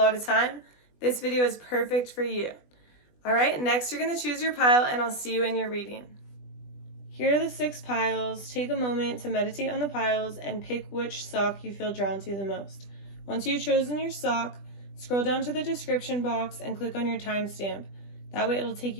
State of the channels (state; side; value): late; right; 20 ms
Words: of time, this video is perfect for you. Alright, next you're going to choose your pile and I'll see you in your reading. Here are the 6 piles. Take a moment to meditate on the piles and pick which sock you feel drawn to the most. Once you've chosen your sock, scroll down to the description box and click on your timestamp. That way it'll take